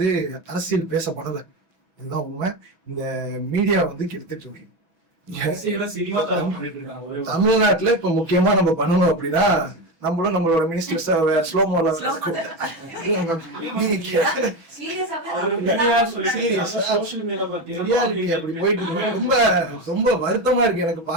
அரசியல் பேசப்படலை. இதுதான் உண்மை. இந்த மீடியா கெடுத்துட்டு இருக்கு. தமிழ்நாட்டுல இப்ப முக்கியமா நம்ம பண்ணணும் அப்படின்னா, நம்மளும் நம்மளோட மினிஸ்டர்ஸ் ஸ்லோ மோல ரொம்ப வருத்தமா இருக்கு எனக்கு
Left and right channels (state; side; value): late; left; 6.1 ms